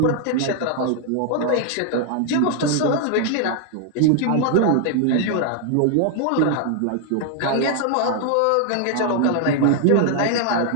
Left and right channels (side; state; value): both; different; correlation 0.00